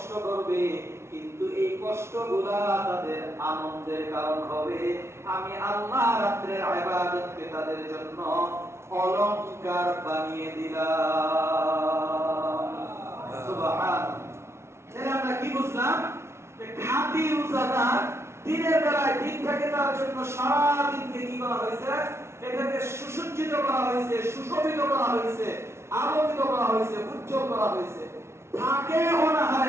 করবে, কিন্তু এই কষ্টগুলা তাদের আনন্দের কারণ হবে। আমি আল্লাহ রাত্রের ইবাদতকে তাদের জন্য অলংকার বানিয়ে দিলাম। সুবহানাল্লাহ। তাহলে আমরা কি বুঝলাম? যে খাঁটি রোজাদার দিনের বেলায় দিন থেকে তার জন্য সারা দিনকে কি করা হয়েছে? এটাকে সুসজ্জিত করা হয়েছে, সুশোভিত করা হয়েছে, আলোকিত করা হয়েছে, উজ্জ্বল করা হয়েছে। থাকে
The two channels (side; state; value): left; late; 0.13 ms